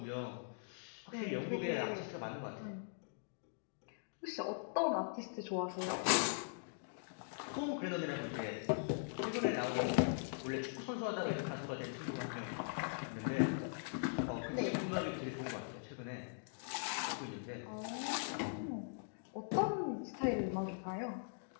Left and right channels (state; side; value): silent; right; digital silence